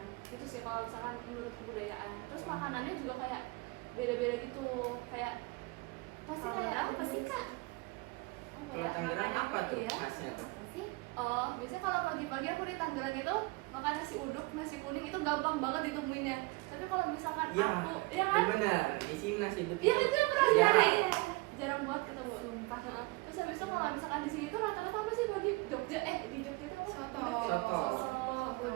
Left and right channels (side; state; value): left; quieter; 24.4 dB